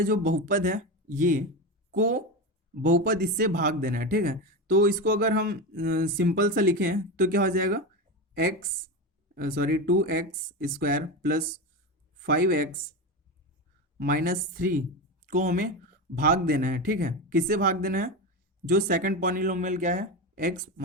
हैं, जो बहुपद है ये को बहुपद इससे भाग देना है। ठीक है, तो इसको अगर हम सिंपल सा लिखें तो क्या हो जाएगा, एक्स 2x² + 5x - 3 को हमें भाग देना है। ठीक है, किससे भाग देना है, जो सेकंड पॉलिनोमियल क्या है, x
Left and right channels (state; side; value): normal; both; correlation 0.19